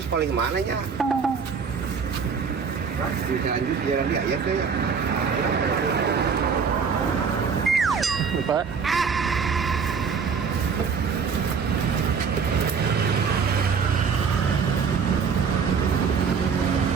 paling mana nya? Di Calanjus jalan dia ya teh. Lupa.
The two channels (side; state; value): left; quieter; 6.0 dB